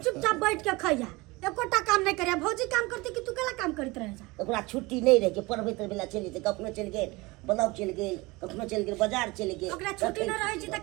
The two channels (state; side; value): quieter; left; 23.1 dB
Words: चुपचाप बैठ के खैया, एकोटा काम नहीं करिया। भौजी काम करती कि तू केला काम करत रह जा। ओकरा छुट्टी नहीं रहे, पढ़बे तर बेला चलि जेतै, कखनो चलि गेल ब्लॉक चलि गेल, कखनो चलि गेल बाजार चलि गेल। ओकरा छुट्टी न रहे छी त